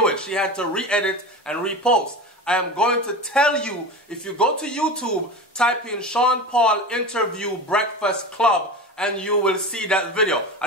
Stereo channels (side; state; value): both; normal; correlation 0.28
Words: it. She had to re-edit and repost. I am going to tell you, if you go to YouTube, type in Sean Paul interview Breakfast Club and you will see that video.